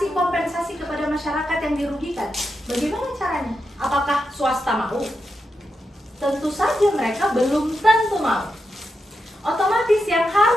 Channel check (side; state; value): both; normal; correlation 0.86